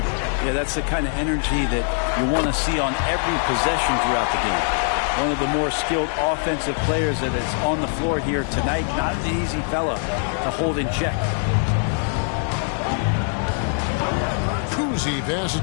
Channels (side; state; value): right; silent; 56 dB below the other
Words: Yeah, that's the kind of energy that you want to see on every possession throughout the game. One of the more skilled offensive players that is on the floor here tonight. Not an easy fella to hold in check. Cousy passes